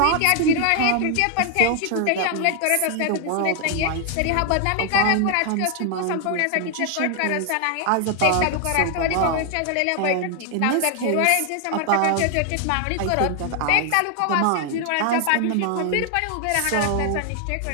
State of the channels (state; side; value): different; both; correlation 0.00